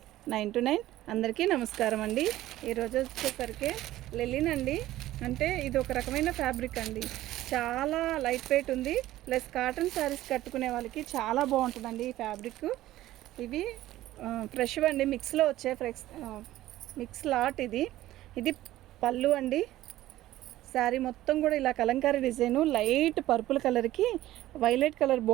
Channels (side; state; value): left; quieter; 15.1 dB